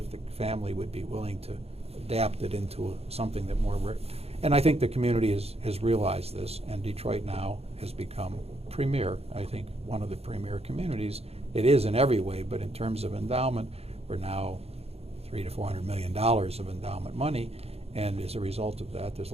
the family would be willing to adapt it into something that more, and I think the community has realized this, and Detroit now has become premier, I think one of the premier communities. It is in every way, but in terms of endowment, we're now $300 to $400 million of endowment money, and as a result of that, there's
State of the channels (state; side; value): late; left; 0.29 ms